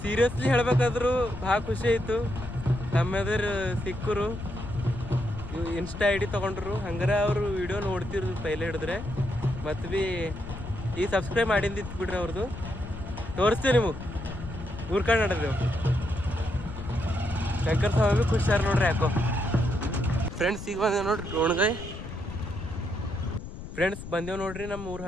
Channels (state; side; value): noise; left; rumble, 10 dB below the sound